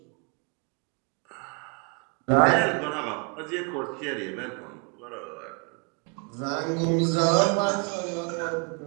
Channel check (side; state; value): left; quieter; 35.3 dB